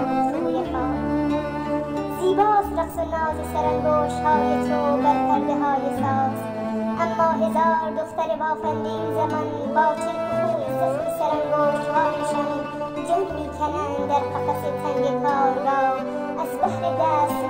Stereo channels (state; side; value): identical; both; correlation 1.00